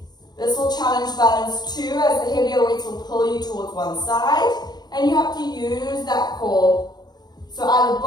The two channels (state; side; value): late; right; 0.20 ms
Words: This will challenge balance too, as the heavier weights will pull you towards one side, and you have to use that core. So either